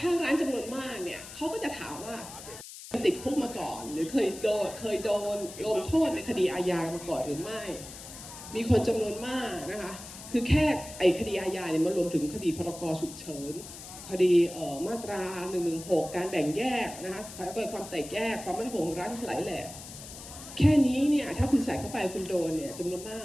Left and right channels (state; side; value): noise; left; hiss, 13 dB below the sound